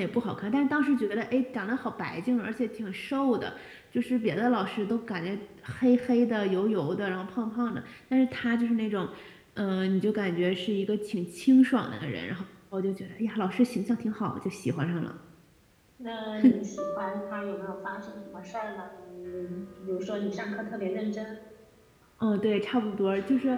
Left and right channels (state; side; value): identical; both; correlation 1.00